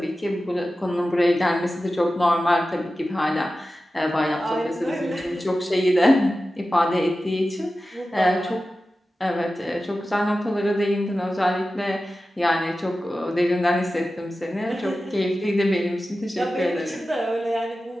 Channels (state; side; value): normal; both; correlation 0.94